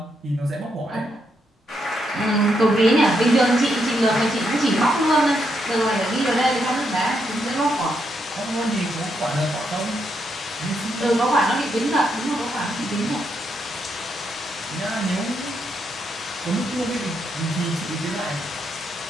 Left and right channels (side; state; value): both; normal; correlation 0.79